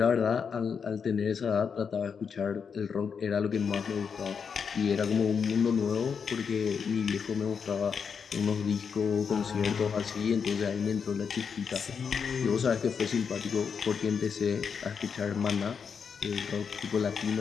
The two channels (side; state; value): right; quieter; 6.3 dB